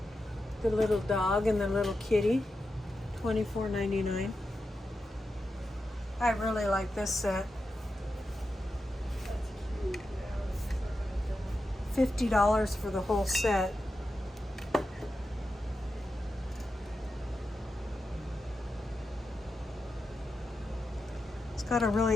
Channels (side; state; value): both; normal; correlation 0.89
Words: The little dog and the little kitty, $24.99. I really like this set. $50 for the whole set. It's got a